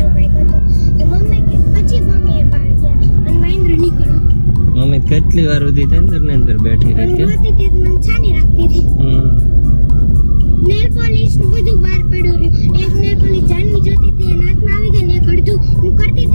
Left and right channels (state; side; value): inverted; both; correlation -1.00